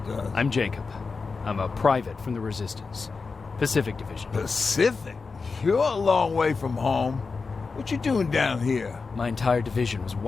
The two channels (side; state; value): right; quieter; 4.5 dB